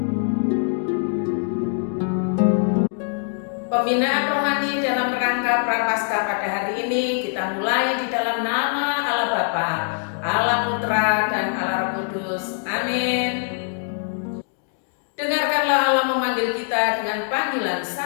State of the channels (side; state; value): right; silent; 64 dB below the other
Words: Pembinaan rohani dalam rangka prapaskah pada hari ini kita mulai di dalam nama Allah Bapa, Allah Putra, dan Allah Roh Kudus. Amin. Dengarkanlah Allah memanggil kita dengan panggilan